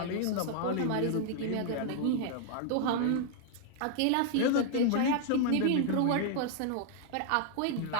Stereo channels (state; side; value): different; both; correlation 0.00